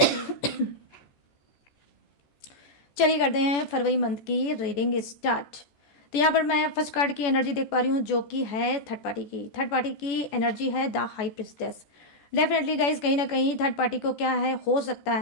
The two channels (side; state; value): right; late; 14 ms